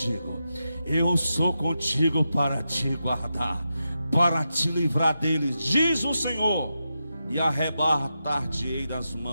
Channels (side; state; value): both; inverted; correlation -0.88